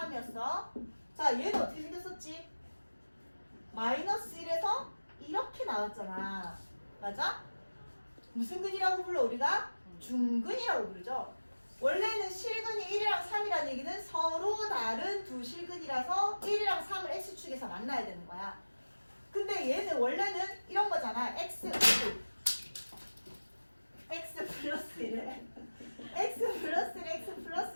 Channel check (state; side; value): inverted; both; correlation -1.00